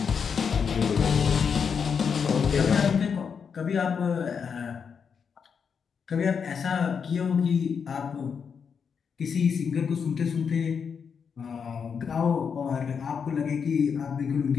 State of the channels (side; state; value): right; quieter; 6.5 dB